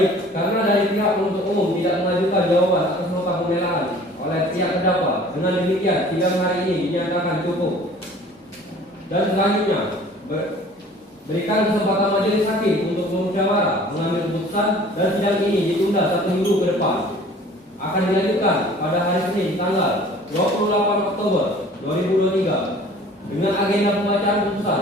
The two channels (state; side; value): normal; both; correlation 0.49